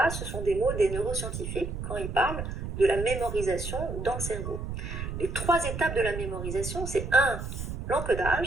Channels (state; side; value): noise; right; rumble, 5 dB below the sound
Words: ce sont des mots des neuroscientifiques quand ils parlent de la mémorisation dans le cerveau. Les trois étapes de la mémorisation, c'est 1,